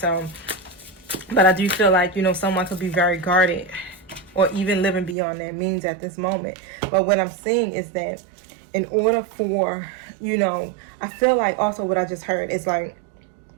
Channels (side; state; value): left; drops out; at 5.2 s